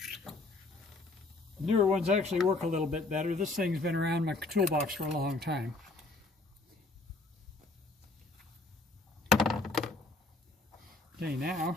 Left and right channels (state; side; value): quieter; right; 3.3 dB